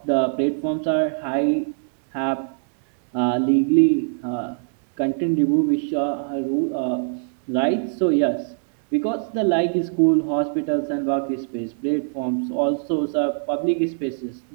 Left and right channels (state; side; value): silent; left; 64 dB below the other